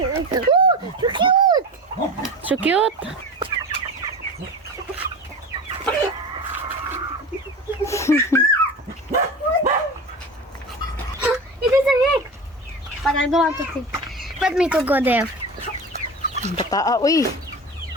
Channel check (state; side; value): normal; both; correlation 0.30